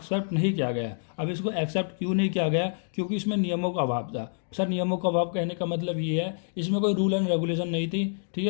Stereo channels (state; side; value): silent; right; digital silence